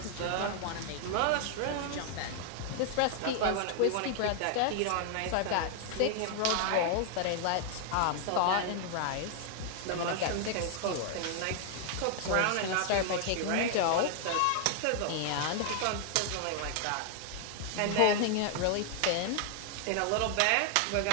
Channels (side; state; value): both; different; correlation 0.00